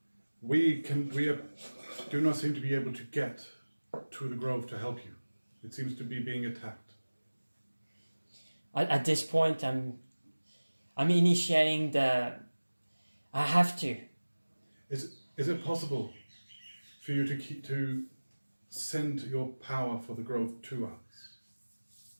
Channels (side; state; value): both; inverted; correlation -1.00